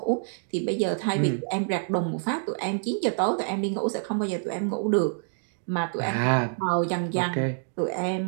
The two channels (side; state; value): left; silent; digital silence